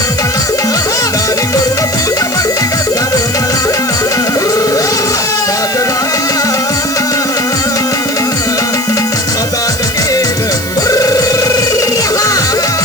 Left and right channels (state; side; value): noise; right; hiss, 10 dB below the sound